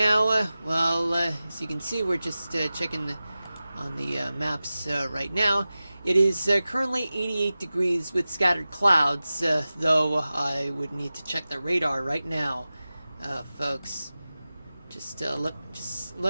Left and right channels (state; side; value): inverted; both; correlation -0.96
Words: as you can see, we're just checking on the maps right now. It is currently 88 degrees with scattered clouds, though I would need to check the radar right now, folks. Just